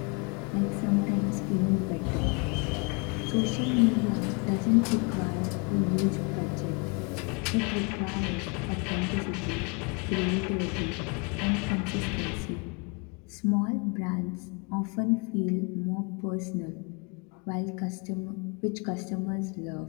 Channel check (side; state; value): right; quieter; 32.8 dB